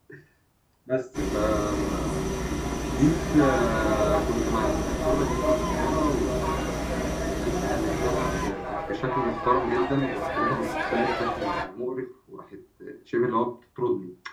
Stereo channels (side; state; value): both; identical; correlation 1.00